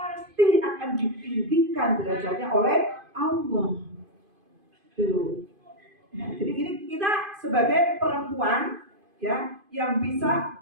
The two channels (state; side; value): late; left; 2.5 ms